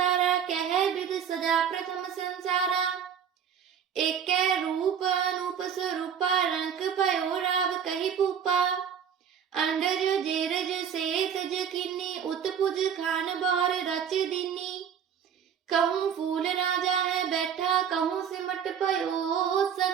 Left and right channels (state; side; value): quieter; left; 8.0 dB